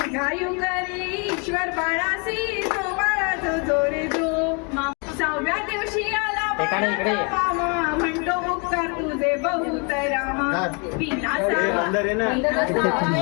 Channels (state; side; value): quieter; right; 34.3 dB